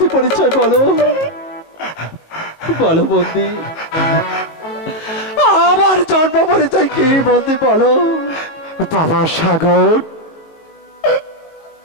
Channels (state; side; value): late; right; 19 ms